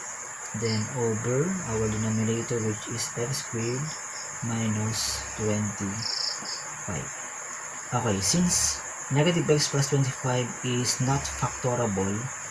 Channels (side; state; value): both; identical; correlation 1.00